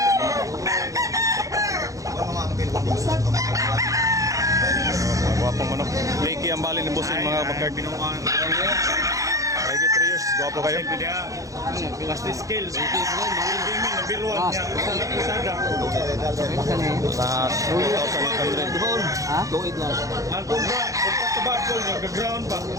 Gwapong manok. Tricky ang bali ng pusing mga kabakerd. Mahigit 3 years. Gwapo kayo. Pasti skills. Hindi min nabiruan niya. Sada. Sa 2,800. Ha? Luid lang. Ang kubra, pagkakabakol niya, gaground pa.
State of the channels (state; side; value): late; left; 0.16 ms